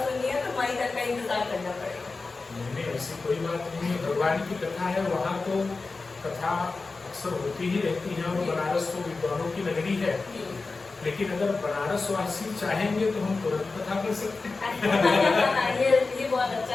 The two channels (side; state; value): right; quieter; 3.9 dB